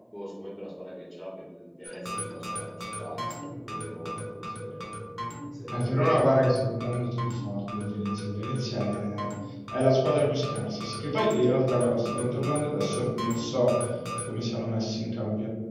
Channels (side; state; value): both; identical; correlation 1.00